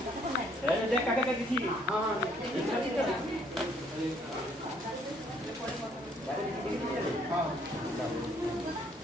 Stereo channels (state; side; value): normal; both; correlation 0.64